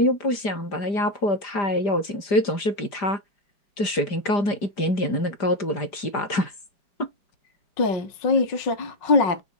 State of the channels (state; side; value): late; right; 4.9 ms